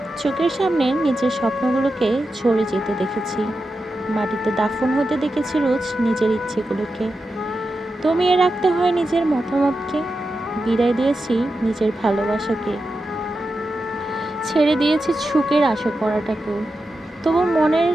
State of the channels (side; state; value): both; normal; correlation 0.90